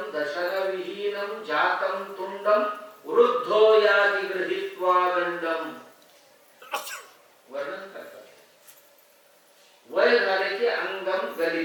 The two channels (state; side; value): identical; both; correlation 1.00